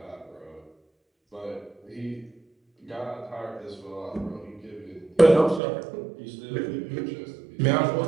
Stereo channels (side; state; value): left; drops out; at 5.6 s